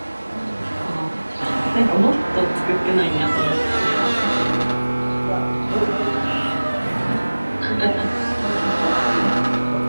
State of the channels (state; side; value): inverted; both; correlation -1.00